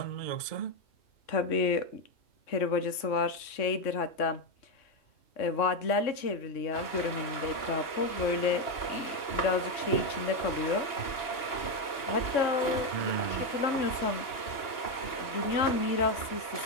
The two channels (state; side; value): late; right; 2.9 ms